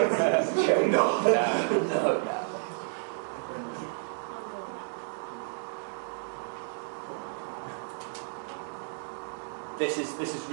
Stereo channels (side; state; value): left; silent; digital silence